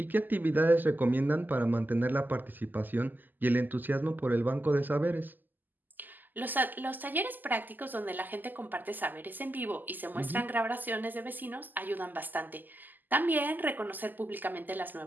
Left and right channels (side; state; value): left; late; 0.087 ms